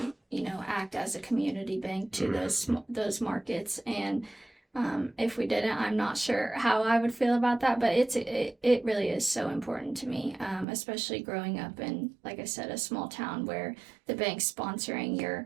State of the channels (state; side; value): drops out; left; at 10.7 s